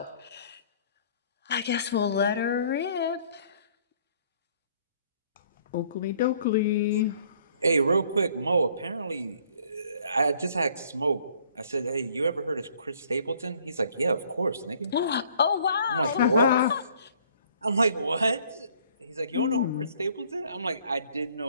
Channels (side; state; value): both; inverted; correlation -0.60